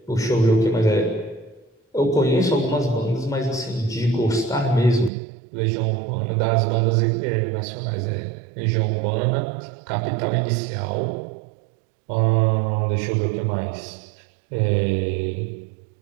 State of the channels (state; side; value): drops out; left; at 5.1 s